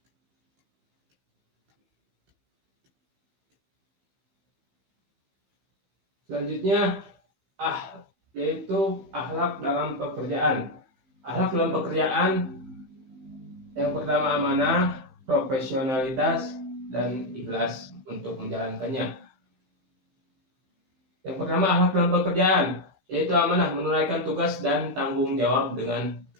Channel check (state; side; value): late; left; 15 ms